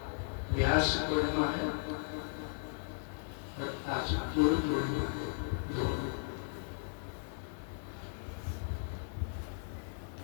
व्यास पूर्णिमा है और आज गुरु पूर्णिमा दोनों।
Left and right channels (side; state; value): right; silent; 54 dB below the other